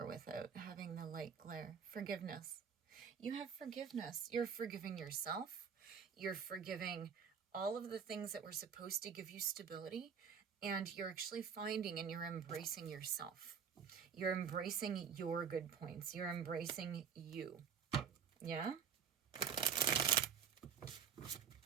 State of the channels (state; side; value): quieter; left; 7.1 dB